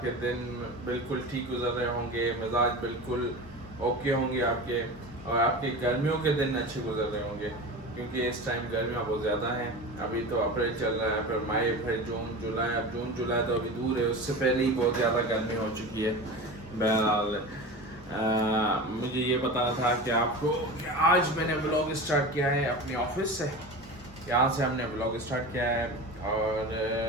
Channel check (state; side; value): normal; both; correlation 0.30